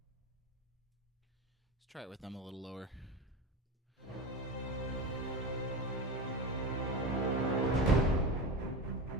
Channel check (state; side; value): normal; both; correlation 0.24